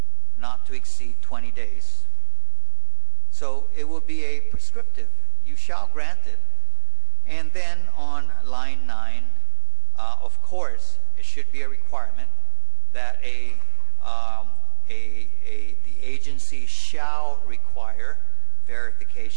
not to exceed 20 days. So it will be a prescriptive. You shall grant it. And then on line 9, of course, it should be a requirement that the agency shall require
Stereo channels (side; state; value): left; silent; 56 dB below the other